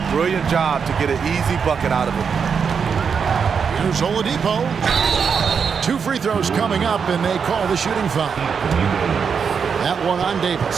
brilliant job to get an easy bucket out of it. Here's Oladipo. 2 free throws coming up, and they call the shooting foul. That one on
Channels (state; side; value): quieter; left; 6.3 dB